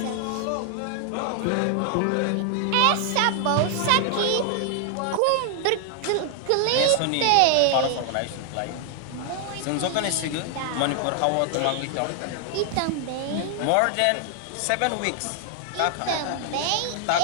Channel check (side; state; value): both; different; correlation 0.00